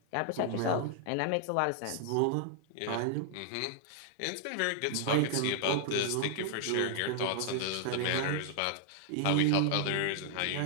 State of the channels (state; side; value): different; both; correlation 0.00